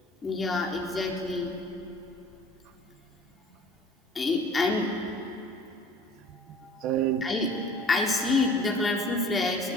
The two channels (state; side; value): normal; both; correlation 0.48